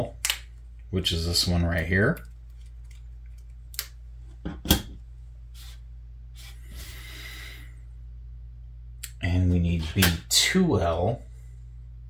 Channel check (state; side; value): identical; both; correlation 1.00